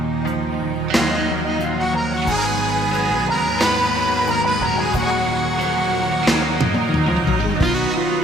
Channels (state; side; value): normal; both; correlation 0.67